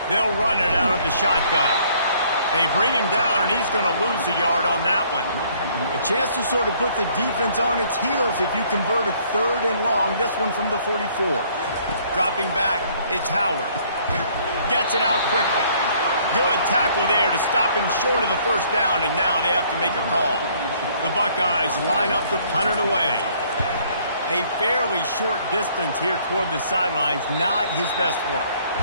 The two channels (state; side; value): inverted; both; correlation -0.61